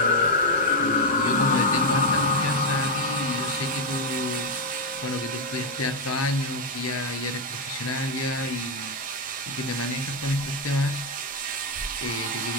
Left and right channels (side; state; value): both; normal; correlation 0.02